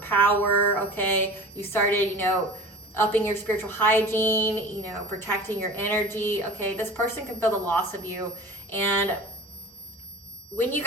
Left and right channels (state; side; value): normal; both; correlation 0.38